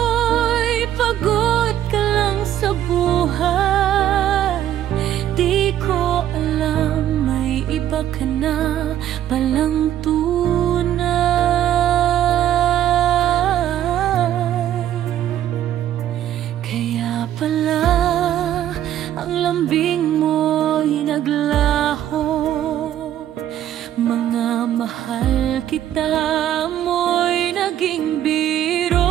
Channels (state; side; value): quieter; left; 11.6 dB